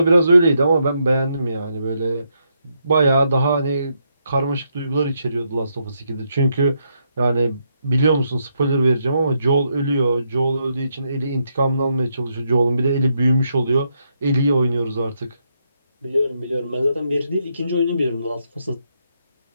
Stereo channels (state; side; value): inverted; both; correlation -0.78